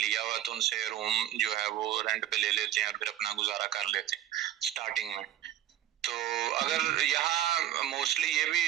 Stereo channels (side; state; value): left; quieter; 12.3 dB